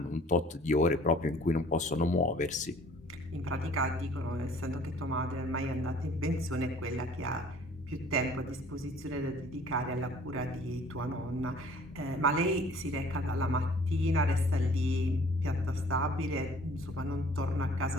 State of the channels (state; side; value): normal; both; correlation 0.53